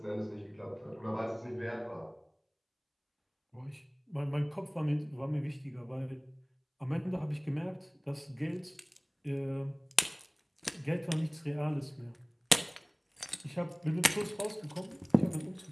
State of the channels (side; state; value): both; identical; correlation 1.00